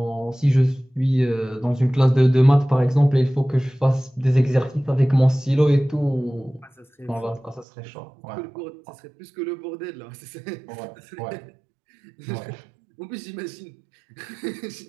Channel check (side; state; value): left; drops out; at 7.7 s